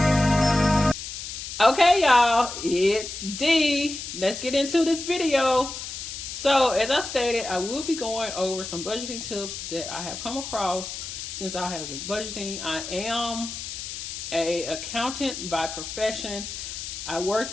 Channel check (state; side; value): noise; left; hiss, 8 dB below the sound